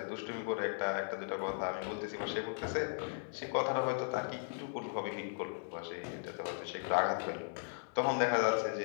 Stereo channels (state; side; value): silent; right; digital silence